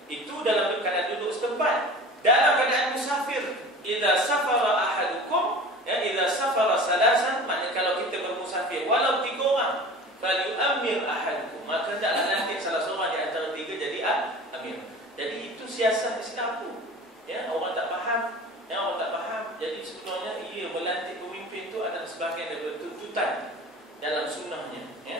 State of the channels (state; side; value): normal; both; correlation 0.39